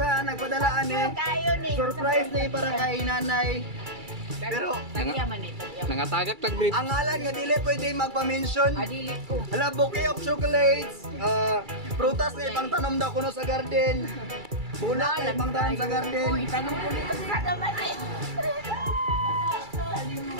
nagpadalaan eh. Surprise na para kay Nanay. Pero Nangatagak tag-brief. ang ngalan nga dili pwede magpa-mention. Adilit ko. Hala, bouquet of chocolates. Prutas na ibang tanom daw kuno sa garden. Bulak na ibang tanom sa garden. Uy, tanong ko nito sa naman eh.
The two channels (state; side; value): late; left; 2.3 ms